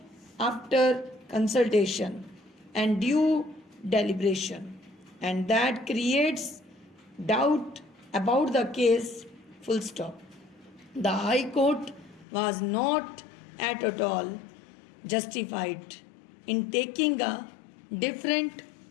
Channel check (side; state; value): right; drops out; at 12.2 s